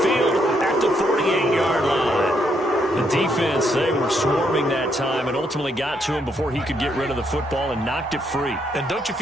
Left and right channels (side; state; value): both; normal; correlation 0.75